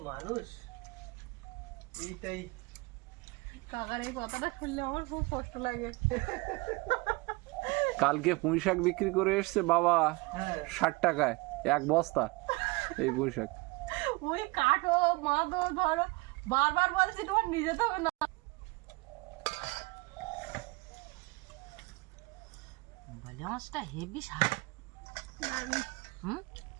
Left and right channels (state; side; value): quieter; left; 25.2 dB